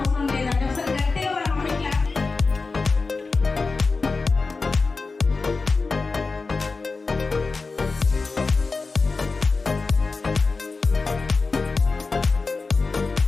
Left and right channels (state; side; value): quieter; right; 4.1 dB